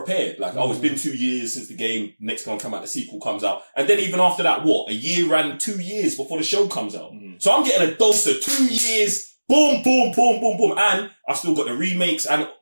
It's been 2 years since the game, next one come out, the sequel comes out. And then even after that, a year and 2 years before the show comes out. So I'm getting a dose of 2 years, boom, boom, boom, boom, boom. And I've still got the remakes, and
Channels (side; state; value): both; inverted; correlation -1.00